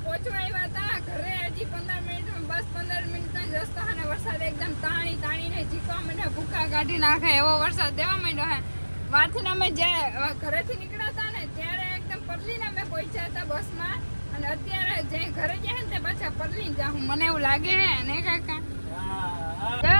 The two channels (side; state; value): both; inverted; correlation -1.00